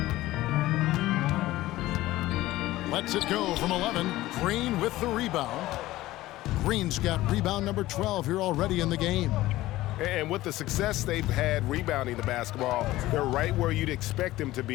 Lets it go from 11. Green with the rebound. Green's got rebound number 12 here already in the game. And with the success they've had rebounding the basketball, they're right where you'd expect them to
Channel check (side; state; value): right; quieter; 16.7 dB